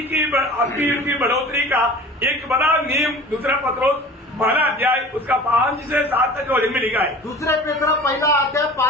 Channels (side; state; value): both; normal; correlation 0.40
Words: की आत्मीय जीवन की बढ़ोतरी का एक बड़ा नियम दूसरा पत्रोस 12 अध्याय उसका 5 से 7 तक वचन में लिखा है। दुसरे पेत्र 1 अध्याय